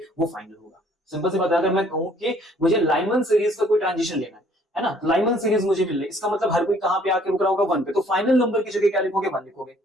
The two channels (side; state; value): both; normal; correlation 0.60